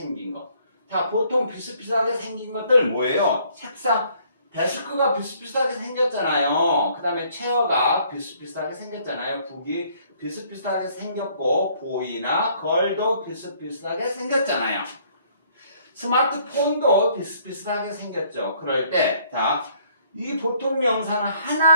거. 자, 보통 비슷비슷하게 생긴 것들 뭐예요? 책상, 데스크가 비슷비슷하게 생겼잖아요. 그 다음에 체어가 비슷비슷하게 생겼잖아요. 북이 비슷비슷하게 생겼고 보이나 걸도 비슷비슷하게 생겼잖아요. 스마트폰도 비슷비슷하게 생겼죠. 그럴 때, 자, 이 보통 명사는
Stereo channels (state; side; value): inverted; both; correlation -0.63